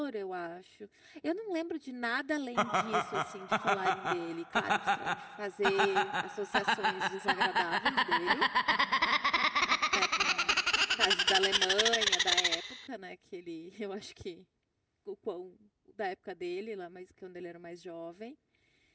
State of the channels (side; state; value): both; identical; correlation 1.00